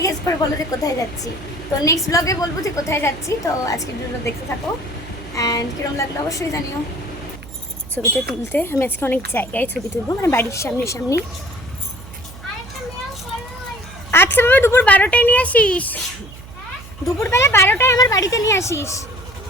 গেস করে বলো যে কোথায় যাচ্ছি। তো নেক্সট ব্লগে বলবো যে কোথায় যাচ্ছি। তো আজকে ভিডিওটা দেখতে থাকো অ্যান্ড কীরকম লাগলো অবশ্যই জানিও। ছবিটা তুলতে আমি আজকে অনেক জায়গায় ছবি তুলবো, মানে বাড়ির সামনে। আচ্ছা বাবা, দুপুর 12টায় নিয়ে আসিস, দুপুরবেলা 12টায় আমার বাড়িতে নিয়ে আসিস।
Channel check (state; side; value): noise; right; hum, 17 dB below the sound